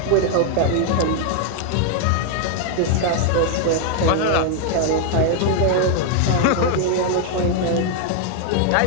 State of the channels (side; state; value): both; different; correlation 0.00